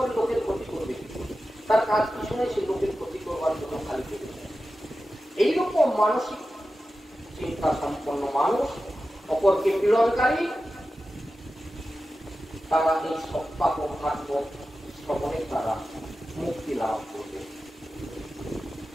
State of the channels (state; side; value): normal; both; correlation 0.93